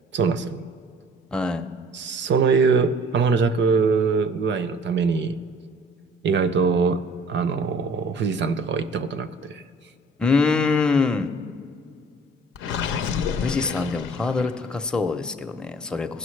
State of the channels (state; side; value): normal; both; correlation 0.51